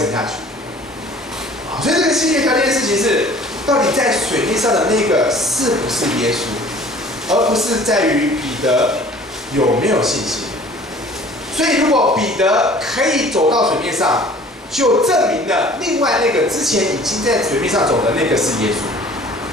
下去。”所以这个先决条件的事情是，到底在水面上的那个是不是耶稣，而不是在于彼得有没有信心。所以如果彼得可以走到水面上，就证明了另外那个之前已经在水面上走的那个是耶稣。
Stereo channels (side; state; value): both; normal; correlation 0.49